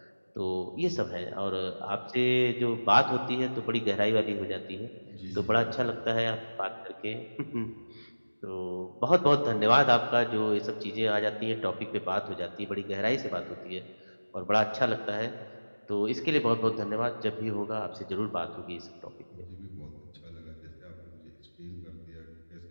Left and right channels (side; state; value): both; inverted; correlation -1.00